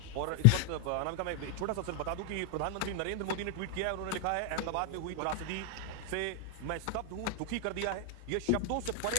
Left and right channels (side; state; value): both; different; correlation 0.00